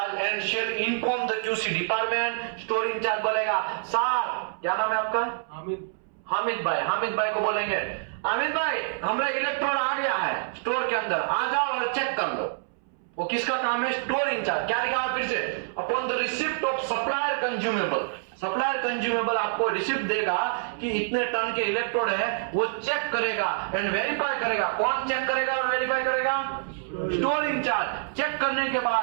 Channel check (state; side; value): silent; left; 60 dB below the other